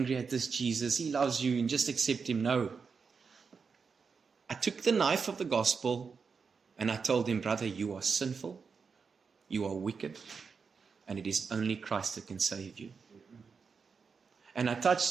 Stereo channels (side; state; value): left; quieter; 5.5 dB